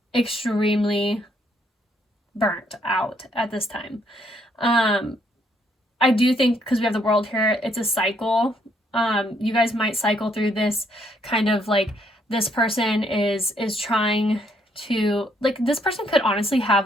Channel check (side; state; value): both; normal; correlation 0.70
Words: extremely burnt out at this time. I do think, because we have the World here, it's a cycle. You guys might cycle through this kind of, like, this person is trying to, like, this person could honestly have